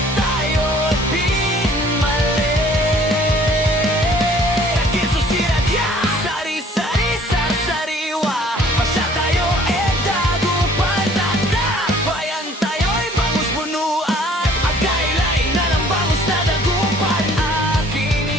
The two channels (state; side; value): normal; both; correlation 0.55